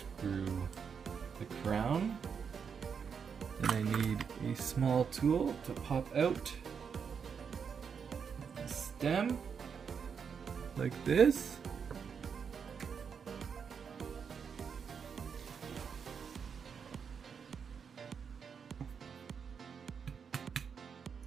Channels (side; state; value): left; quieter; 6.5 dB